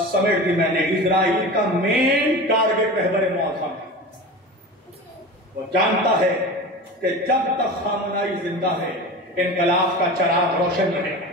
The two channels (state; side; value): normal; both; correlation 0.31